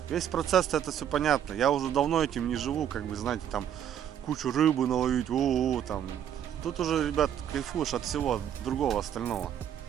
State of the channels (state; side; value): quieter; left; 9.8 dB